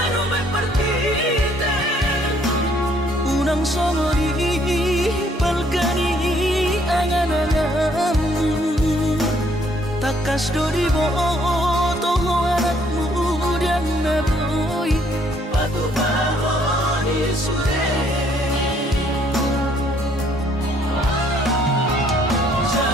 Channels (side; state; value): both; normal; correlation 0.65